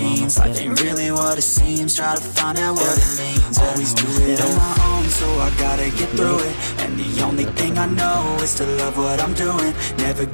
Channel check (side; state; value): both; inverted; correlation -1.00